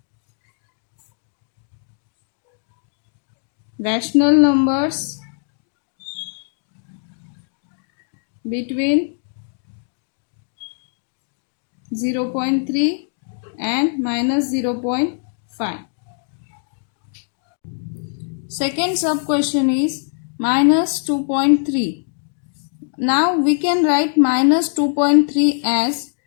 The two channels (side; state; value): right; silent; digital silence